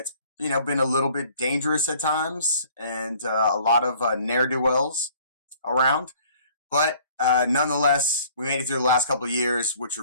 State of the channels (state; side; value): inverted; both; correlation -0.55